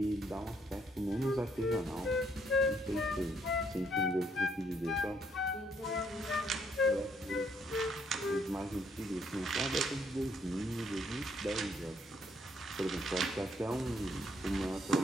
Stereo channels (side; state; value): both; normal; correlation 0.69